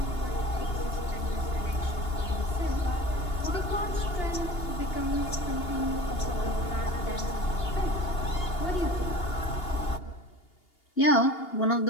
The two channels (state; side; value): late; right; 2.8 ms